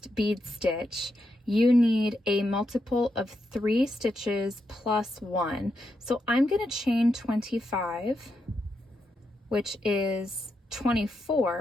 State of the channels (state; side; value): normal; both; correlation 0.84